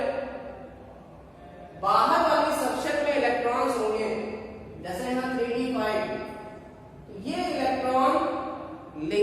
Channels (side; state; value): both; identical; correlation 1.00